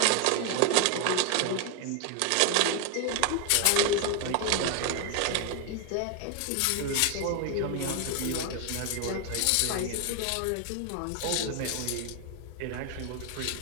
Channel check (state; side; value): different; both; correlation 0.01